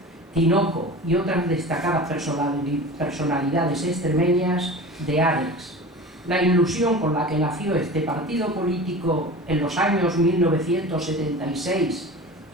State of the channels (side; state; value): both; normal; correlation 0.35